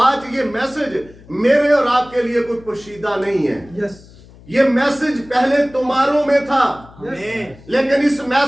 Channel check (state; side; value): noise; left; hum, 23 dB below the sound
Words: आज ये मैसेज मेरे और आपके लिए कोई पोशीदा नहीं है। ये मैसेज पहले तुम्हारों में था, लेकिन इस